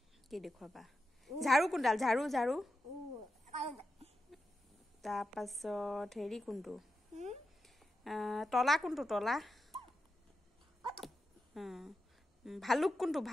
কি দেখুৱাবা ঝাৰু কোনডাল ঝাৰু ঝাৰু তাৰপাছত হেৰি কোনটো তলা কোনটো তলা ভালুক কোনটো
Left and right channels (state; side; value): normal; both; correlation 0.89